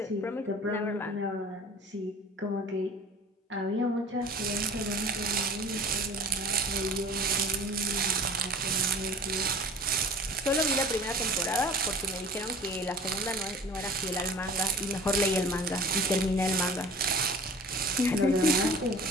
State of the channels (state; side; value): normal; both; correlation 0.43